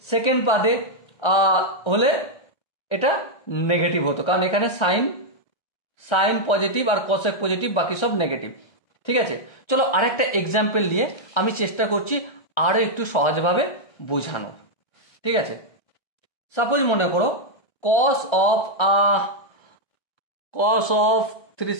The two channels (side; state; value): right; late; 1.3 ms